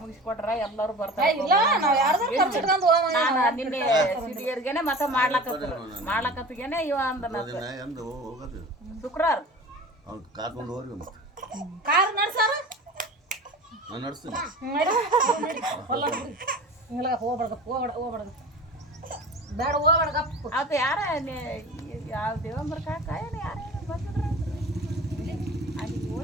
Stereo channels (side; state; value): both; normal; correlation 0.37